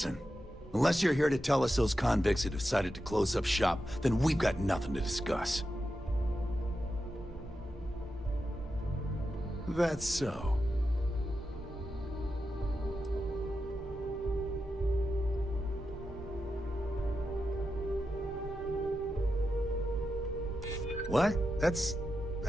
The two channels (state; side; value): normal; both; correlation 0.89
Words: unless you're here to tell us those convicts have decided to close up shop, then we've got nothing to discuss. That's so. What? That's